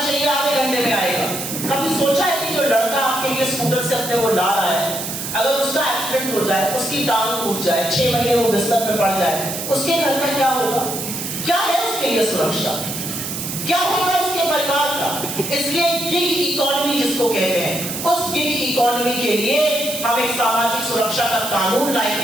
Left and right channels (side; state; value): right; noise; hiss, 6 dB below the sound